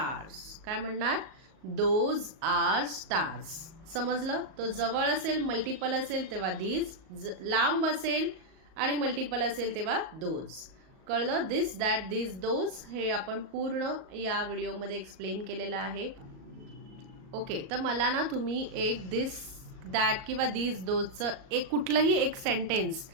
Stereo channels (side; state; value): left; late; 38 ms